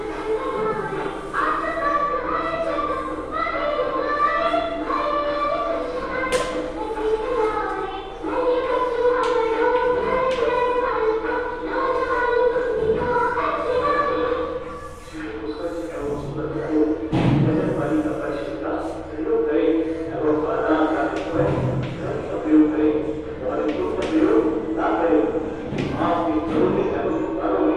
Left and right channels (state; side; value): identical; both; correlation 1.00